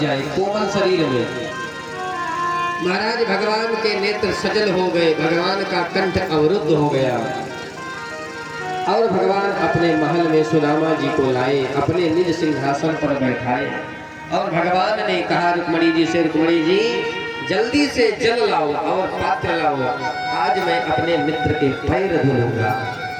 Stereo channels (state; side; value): identical; both; correlation 1.00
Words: जाए कोमल शरीर में। महाराज भगवान के नेत्र सजल हो गए, भगवान का कंठ अवरुद्ध हो गया, और भगवान अपने महल में सुदामा जी को लाए, अपने निज सिंहासन पर बैठाए, और भगवान ने कहा रुक्मणी जी से, रुक्मणी जी जल्दी से जल लाओ और पात्र लाओ, आज मैं अपने मित्र के पैर धुलूंगा।